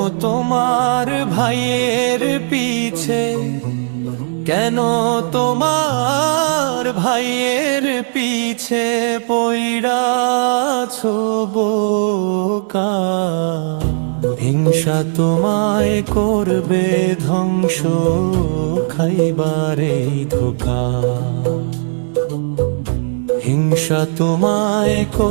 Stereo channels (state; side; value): silent; left; 63 dB below the other